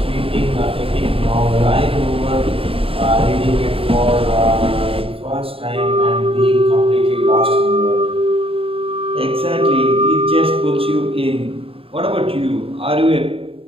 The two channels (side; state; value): left; late; 0.27 ms